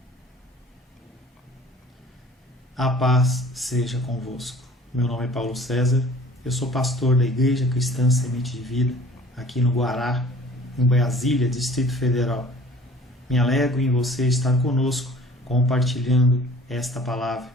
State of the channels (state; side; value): normal; both; correlation 0.49